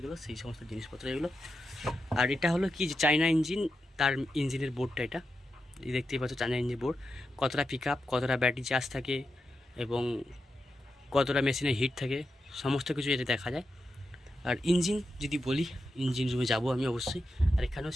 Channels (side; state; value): both; normal; correlation 0.88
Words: সেই সমস্ত জিনিসপত্র এগুলো। আর এটা হলো কি, চায়না ইঞ্জিন, তার ইঞ্জিনের বোর্ডটা এটা দেখতেই পাচ্ছ, চায়না ইঞ্জিন বোর্ড। কতটা পিক আপ, কতটা ব্যাটারি চার্জ থাকে এবং কতটা মেশিনের হিট থাকে, সমস্ত কিছু এটা দেখা যায়। আর ইঞ্জিন যদি বলি, ইঞ্জিন রুমে যাবো আমি অবশ্যই। আর এখানেও